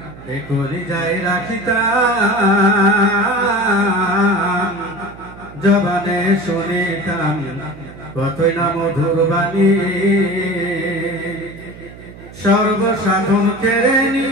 এই কলি যাই রাখিতাম জবানে শুনিতাম কতই না মধুর বাণী সর্বসাধন কেড়ে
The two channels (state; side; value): noise; right; hum, 18 dB below the sound